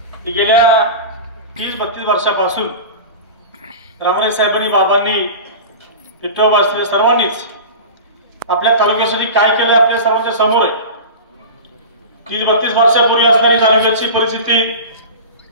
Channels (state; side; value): inverted; both; correlation -0.31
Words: की गेल्या 30-32 वर्षापासून रामणे साहेबांनी, बाबांनी, विठ्ठल सर्वांनीच आपल्या तालुक्यासाठी काय केलं आपल्या सर्वांच्या समोर आहे. 30-32 वर्षापूर्वी असणारी तालुक्याची परिस्थिती